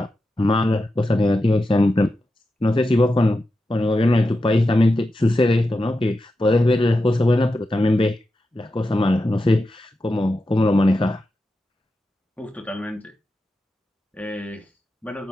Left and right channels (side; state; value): both; normal; correlation 0.89